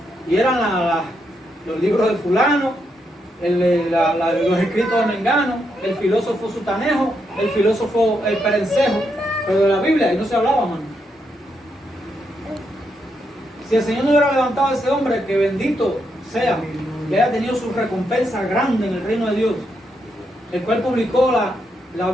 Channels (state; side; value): normal; both; correlation 0.80